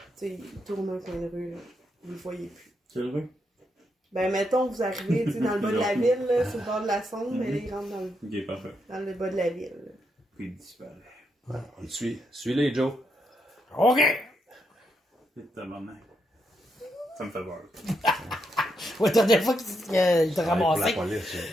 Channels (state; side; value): normal; both; correlation 0.80